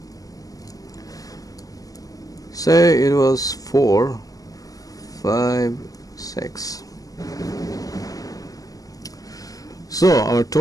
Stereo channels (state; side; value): late; right; 0.17 ms